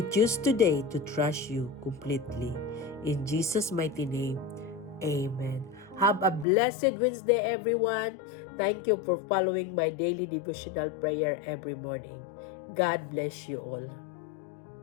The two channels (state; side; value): drops out; right; at 6.5 s